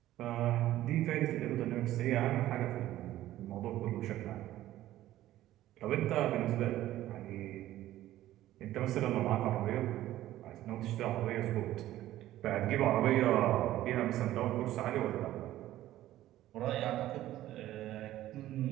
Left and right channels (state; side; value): quieter; left; 14.3 dB